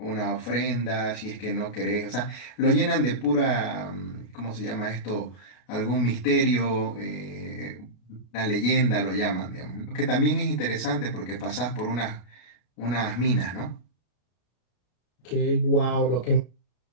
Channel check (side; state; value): right; late; 33 ms